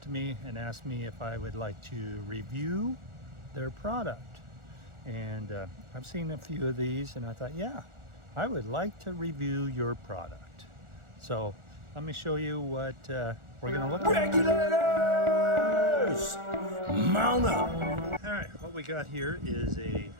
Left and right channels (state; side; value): late; left; 1.4 ms